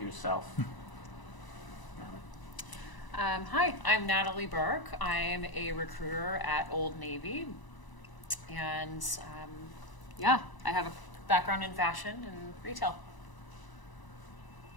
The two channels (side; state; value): right; late; 1.0 ms